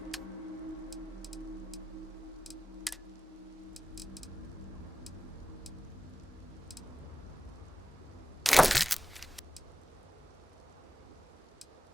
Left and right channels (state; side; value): normal; both; correlation 0.94